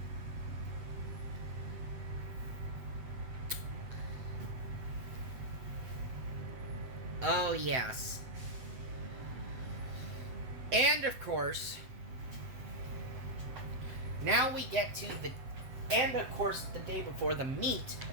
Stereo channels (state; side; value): late; left; 7.9 ms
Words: Oh, yes. And, of course, now we get to the day before the meet,